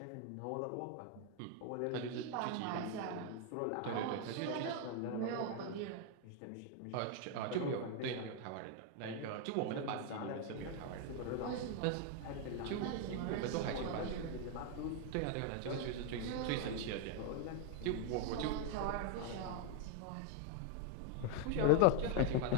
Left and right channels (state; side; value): different; both; correlation 0.00